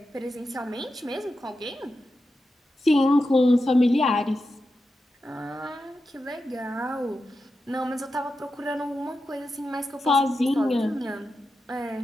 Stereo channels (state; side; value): normal; both; correlation 0.90